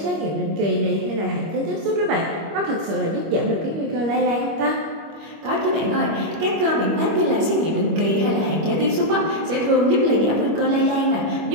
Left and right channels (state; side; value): late; left; 25 ms